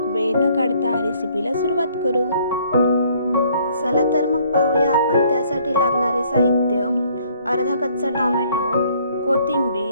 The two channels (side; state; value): both; inverted; correlation -0.62